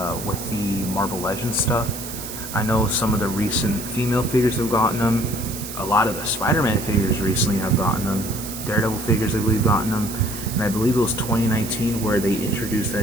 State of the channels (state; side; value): noise; right; hiss, 9 dB below the sound